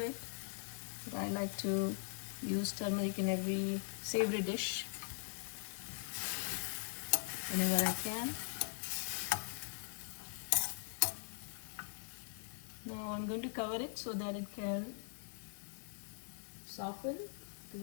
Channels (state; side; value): silent; right; digital silence